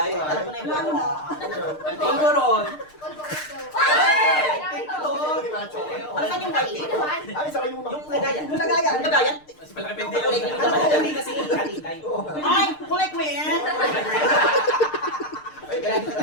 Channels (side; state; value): right; late; 6.6 ms